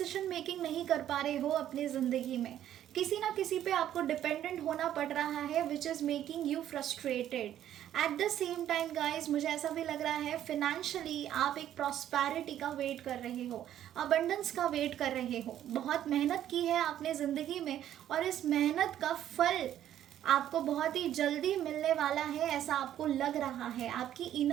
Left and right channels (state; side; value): quieter; left; 11.4 dB